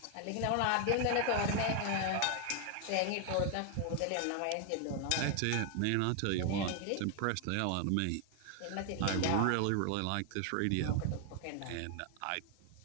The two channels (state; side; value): different; both; correlation 0.00